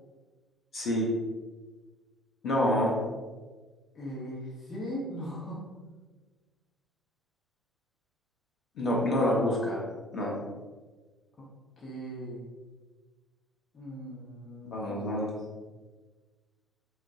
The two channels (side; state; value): both; normal; correlation 0.50